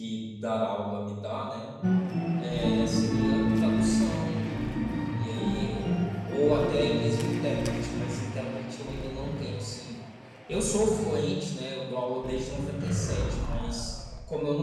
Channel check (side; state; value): both; identical; correlation 1.00